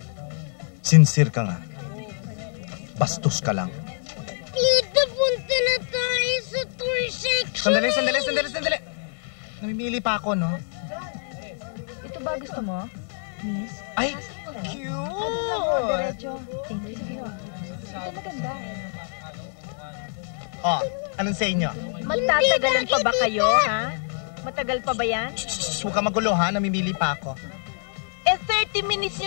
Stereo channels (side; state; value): right; silent; 61 dB below the other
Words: Sincere ka nga. Bastos ka lang. Tita, punta na tayo sa toy section. Sandali. Namimili pa ako, no? Ito ba gusto mo, miss? Ay, cute! Diretso. Thank you. Ito maganda. Oh, anong sa inyo? Magtatagalan pa ba kayo, ha? Matagal pa ba yan? Huwag ka magulo, ha? Namimili pa ako. Eh, 30 minutes